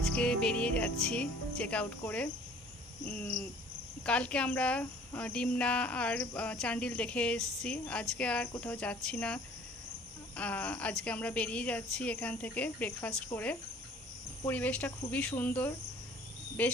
বেরিয়ে যাচ্ছি চেক আউট করে। কালকে আমরা ডিমনা আর চান্ডিল দেখে এসেছি, আজকে আর কোথাও যাচ্ছি না। আজকে আমরা বেরিয়ে যাচ্ছি এখান থেকে ব্রেকফাস্ট করে। পরিবেশটা খুবই সুন্দর, বেশ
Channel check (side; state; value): both; normal; correlation 0.52